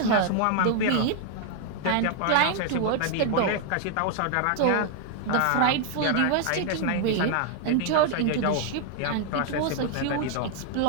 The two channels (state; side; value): different; both; correlation 0.00